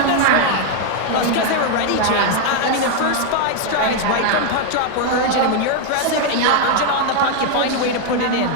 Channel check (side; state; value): both; different; correlation 0.00